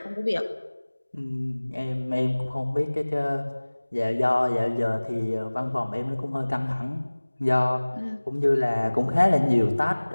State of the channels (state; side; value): inverted; both; correlation -1.00